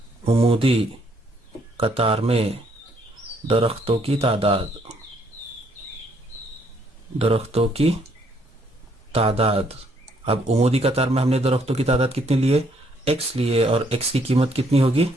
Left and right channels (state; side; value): normal; both; correlation 0.68